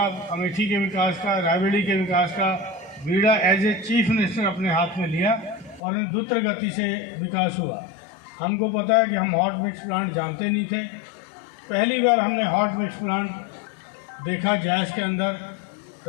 अमेठी के विकास का, रायबरेली के विकास का बीड़ा एज ए चीफ मिनिस्टर अपने हाथ में लिया और द्रुत गति से विकास हुआ। हमको पता है कि हम हॉट मिक्स प्लांट जानते नहीं थे। पहली बार हमने हॉट मिक्स प्लांट देखा जैश के अंदर,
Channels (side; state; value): right; drops out; at 5.8 s